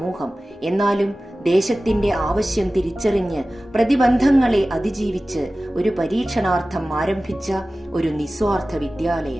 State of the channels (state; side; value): normal; both; correlation 0.96